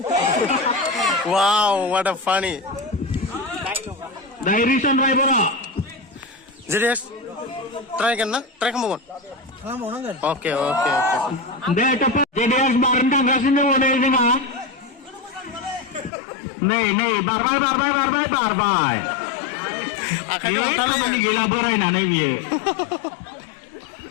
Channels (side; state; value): right; drops out; at 16.1 s